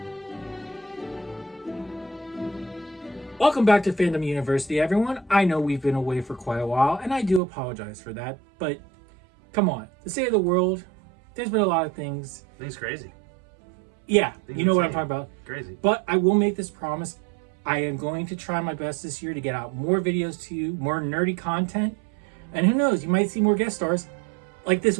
Welcome back to Fandom University, everyone. I know we've been away for quite a while, and I do apologize for that, but come on. The state of the world, there's been a lot of things. Things crazy. Yeah, Things you know what I'm insane. talking about. Crazy. But I will make this promise. I am going to try my best this year to get out more videos to you, more nerdy content, and who knows, you might see more guest stars like this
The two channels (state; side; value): drops out; left; at 7.4 s